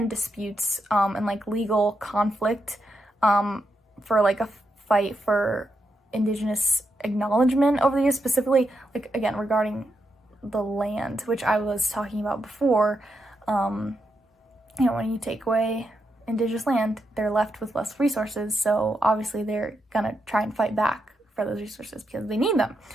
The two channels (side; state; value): both; normal; correlation 0.84